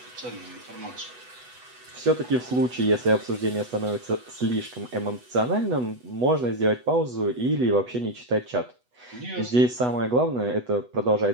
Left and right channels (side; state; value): left; late; 8.1 ms